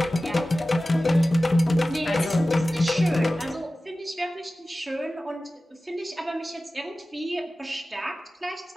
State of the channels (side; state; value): both; normal; correlation 0.96